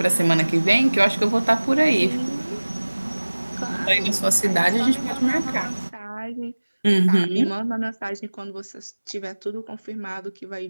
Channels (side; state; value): both; inverted; correlation -1.00